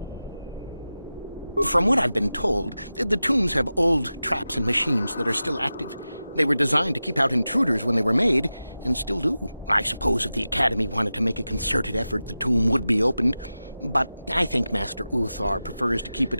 From what I've been told, the tombs have old traps and machines that are still active. They were designed to keep out intruders when they were made, and still do. I suppose if the Academy wanted to make a concerted effort, the tomb would be opened. But I think Master Uthar prefers to keep it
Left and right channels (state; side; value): inverted; both; correlation -0.94